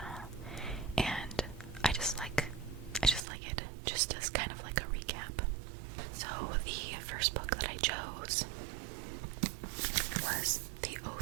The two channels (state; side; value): drops out; left; at 3.2 s